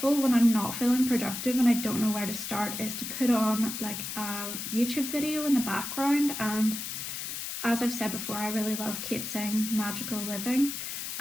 when I'm not feeling productive and I don't know where to start is to put on like a YouTube video in the background. And as I've said before, I really love Kate Singh Magical Living,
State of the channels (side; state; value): left; noise; hiss, 6 dB below the sound